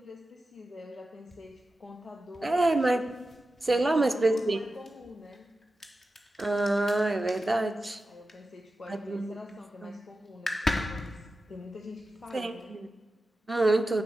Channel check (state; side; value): normal; both; correlation 0.93